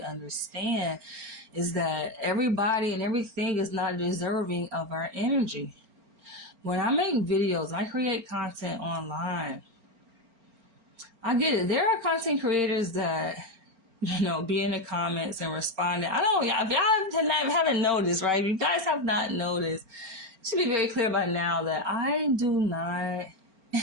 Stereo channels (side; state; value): left; late; 4.4 ms